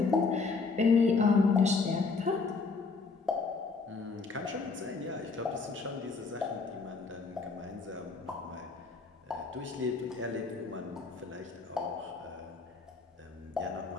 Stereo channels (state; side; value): quieter; right; 4.4 dB